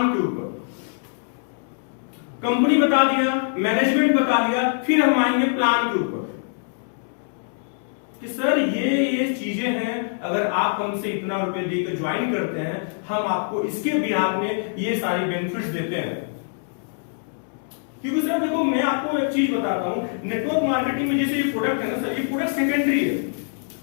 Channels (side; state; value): right; silent; 63 dB below the other